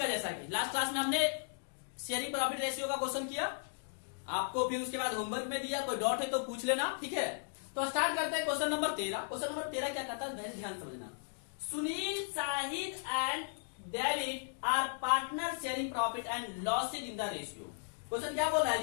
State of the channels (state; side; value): silent; right; digital silence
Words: जैसा कि लास्ट क्लास में हमने शेयरिंग प्रॉफिट रेशियो का क्वेश्चन किया आपको, फिर उसके बाद होमवर्क में दिया, कोई डाउट है तो पूछ लेना, ठीक है। तो स्टार्ट करते हैं क्वेश्चन नंबर 13। क्वेश्चन नंबर 13 क्या कहता है, ध्यान समझना। Sunil, Shahid and David are partner sharing profit and losses in the ratio. Question क्या बोल रहा है